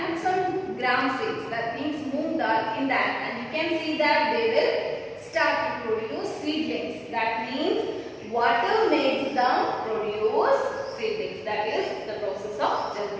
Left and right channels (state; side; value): identical; both; correlation 1.00